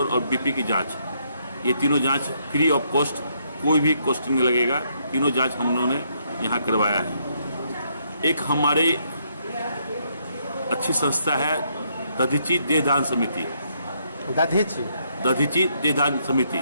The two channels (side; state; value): both; inverted; correlation -0.73